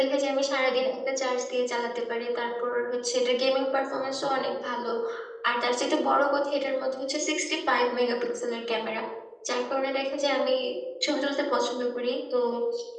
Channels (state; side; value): identical; both; correlation 1.00